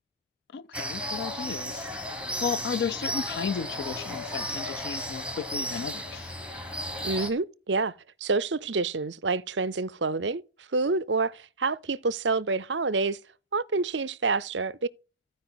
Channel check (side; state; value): both; normal; correlation -0.16